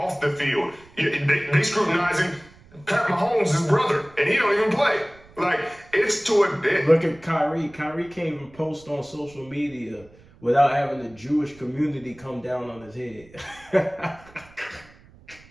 the field. They scrutinizing Pat Mahomes' his brother, and he don't even play. Like, it's to a... Look at Kyrie. Kyrie can't even post on social media without having the Jewish community come down on his head.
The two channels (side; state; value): right; noise; rumble, 25 dB below the sound